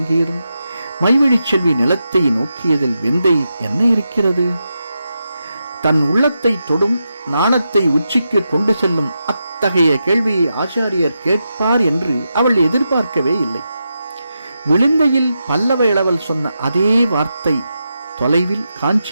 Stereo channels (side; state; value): both; inverted; correlation -0.87